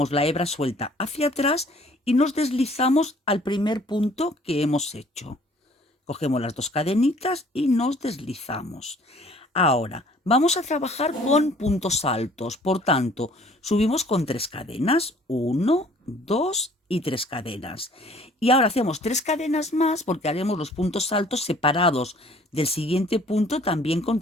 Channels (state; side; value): normal; both; correlation 0.55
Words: la hebra suelta hacia atrás y nos deslizamos al primer punto que hemos hecho. Cogemos las dos cadenitas y nos deslizamos. Ahora, vamos a trabajar con puntos altos, por tanto, subimos con 3 cadenas, 1, 2 y 3 cadenas. Y ahora hacemos 3 cadenas más porque haremos los puntos altos separados del siguiente punto también con